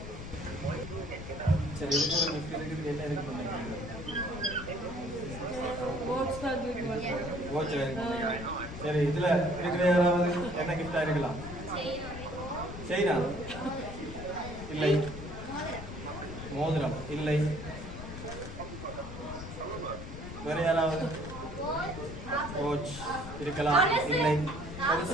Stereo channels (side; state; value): left; noise; rumble, 10 dB below the sound